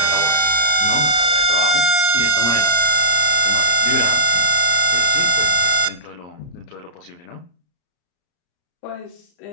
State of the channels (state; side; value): late; right; 34 ms